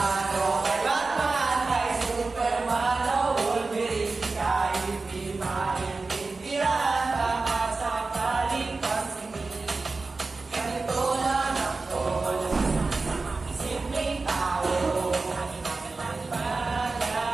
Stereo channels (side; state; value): left; quieter; 3.8 dB